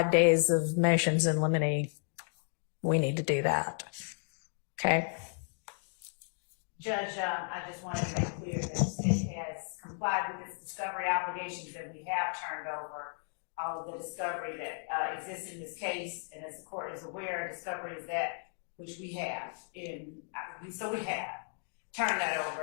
days of motions in limine, we need to do that. Okay. Judge, I just wanted to make clear that the state has complied with its discovery obligations, and we have turned over all of the discovery that exists in this case. And as the court is aware, discovery is that which we have so we have turned that over,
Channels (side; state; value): right; silent; 55 dB below the other